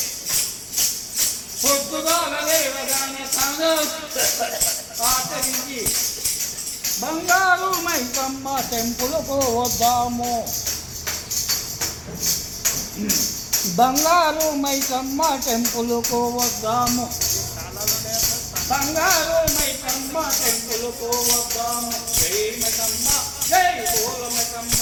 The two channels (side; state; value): both; identical; correlation 1.00